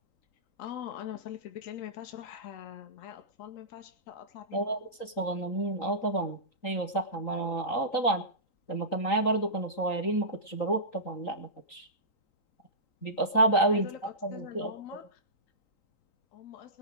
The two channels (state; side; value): late; right; 3.9 ms